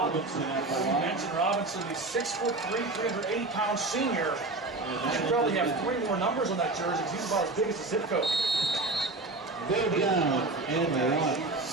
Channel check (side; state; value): left; quieter; 3.1 dB